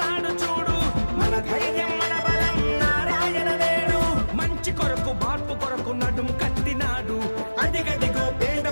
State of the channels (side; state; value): both; inverted; correlation -1.00